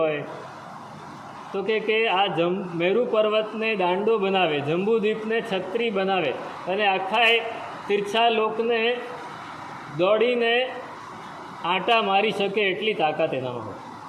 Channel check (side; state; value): both; identical; correlation 1.00